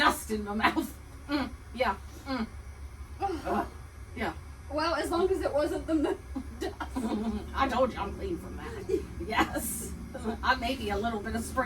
in my mouth. Yeah. Yeah. Well, as long as it wasn't the dust. I told you I'm clean from that. Yes. Maybe a little bit of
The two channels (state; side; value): identical; both; correlation 1.00